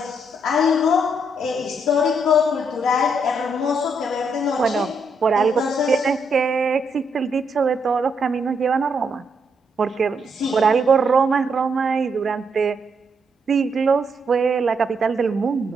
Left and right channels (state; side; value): normal; both; correlation 0.76